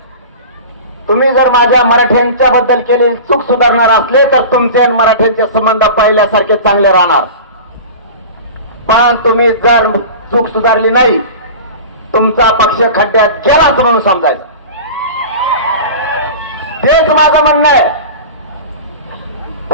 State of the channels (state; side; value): inverted; both; correlation -0.34